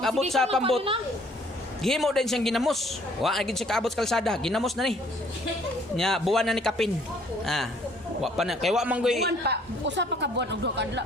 abot sa pambot, gihimo din siyang ginamos. Wa na gyud siya kaabot sa kalsada, ginamos na ni. Nya buwan na ni kapin. Ah, wa pa na kay wa man goy Buwan pa. Usa pa ka buwan og 2 kadla.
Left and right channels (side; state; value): both; normal; correlation 0.60